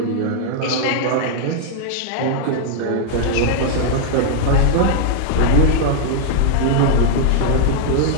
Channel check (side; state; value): both; different; correlation -0.01